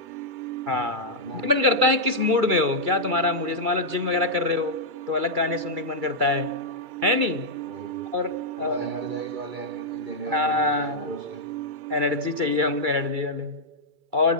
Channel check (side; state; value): left; late; 2.3 ms